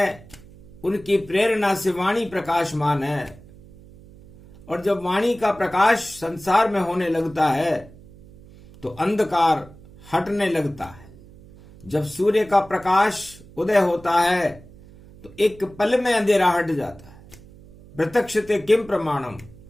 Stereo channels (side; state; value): right; noise; hum, 22 dB below the sound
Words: उनकी प्रेरणा से वाणी प्रकाशमान है। और जब वाणी का प्रकाश संसार में होने लगता है तो अंधकार हटने लगता है। जब सूर्य का प्रकाश उदय होता है तो एक पल में अंधेरा हट जाता है। प्रत्यक्षते किम प्रमाणम,